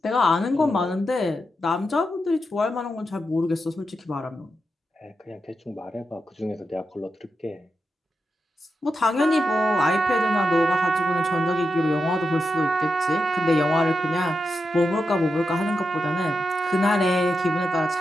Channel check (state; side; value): normal; both; correlation 0.87